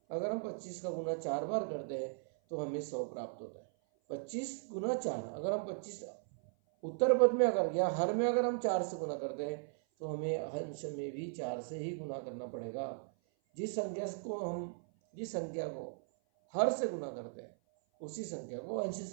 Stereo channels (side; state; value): left; silent; 53 dB below the other